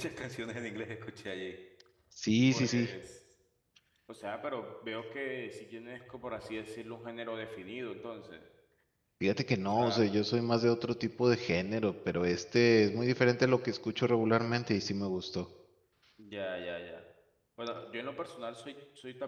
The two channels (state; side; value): identical; both; correlation 1.00